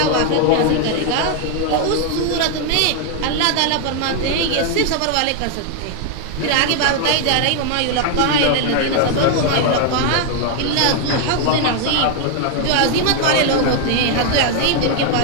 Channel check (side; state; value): both; different; correlation 0.00